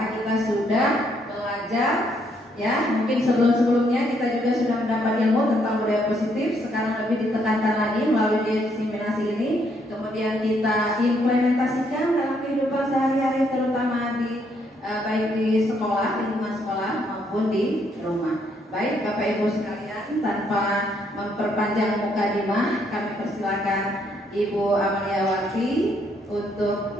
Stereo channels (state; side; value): normal; both; correlation 0.72